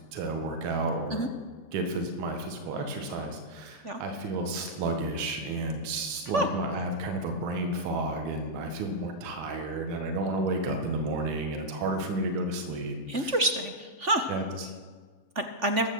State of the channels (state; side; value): late; left; 3.5 ms